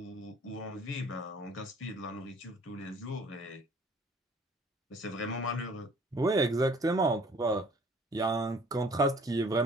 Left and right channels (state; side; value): normal; both; correlation 0.54